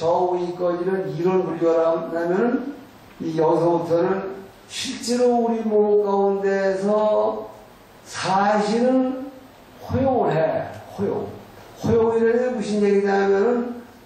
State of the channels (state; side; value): identical; both; correlation 1.00